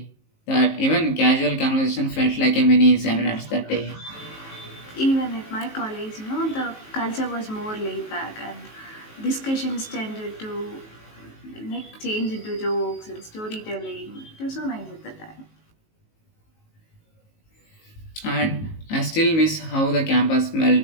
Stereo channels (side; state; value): right; late; 19 ms